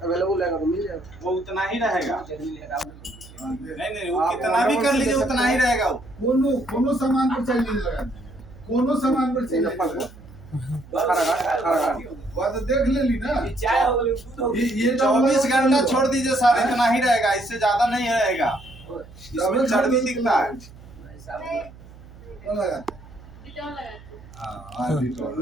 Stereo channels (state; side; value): noise; right; hum, 20 dB below the sound